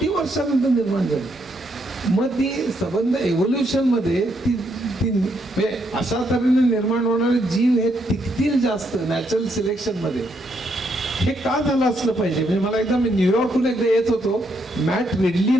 वर्षानंतर निर्माण झाली. मग ती संबंध एव्होल्युशनमध्ये ती म्हणजे अशा तऱ्हेने निर्माण होणारे जीव हे टिकतील जास्त नॅचरल सिलेक्शनमध्ये. हे का झालं असलं पाहिजे. म्हणजे मला एकदा मी न्यूयॉर्कहून एकदा येत होतो, मॅट रिडली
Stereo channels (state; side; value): normal; both; correlation 0.76